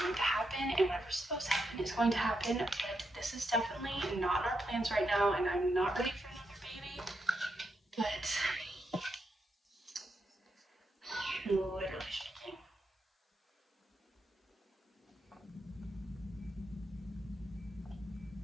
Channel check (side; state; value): both; normal; correlation 0.83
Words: to happen, and whatever's supposed to happen is going to happen, but this is definitely not in our plans right now, and I'm not ready for another baby, but literally shaking.